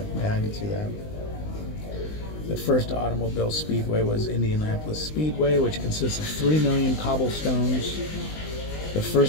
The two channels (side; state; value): right; late; 19 ms